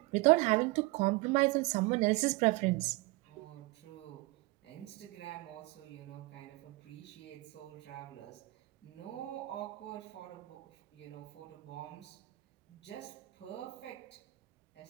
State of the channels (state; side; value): quieter; left; 21.8 dB